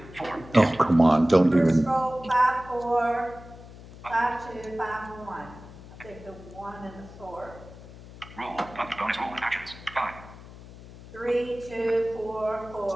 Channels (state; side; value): noise; left; hum, 17 dB below the sound